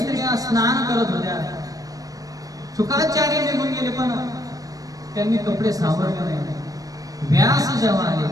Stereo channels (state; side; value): late; left; 0.17 ms